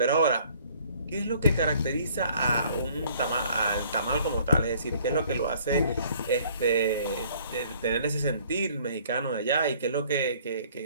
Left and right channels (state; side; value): inverted; both; correlation -0.58